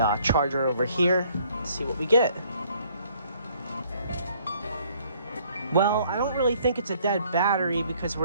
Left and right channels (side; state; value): both; inverted; correlation -0.62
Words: charger over here and see what we get. Well, I don't really think it's a dead battery because